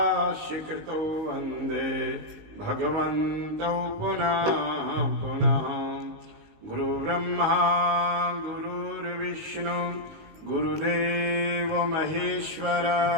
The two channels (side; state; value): left; late; 19 ms